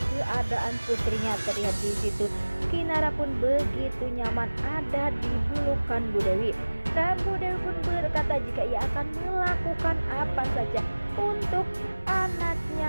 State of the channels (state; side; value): inverted; both; correlation -1.00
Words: keadaan putrinya. Terlihat di situ Kinara pun begitu nyaman ada di pelukan Bu Dewi. Dan Bu Dewi pun berkata jika ia akan melakukan apa saja untuk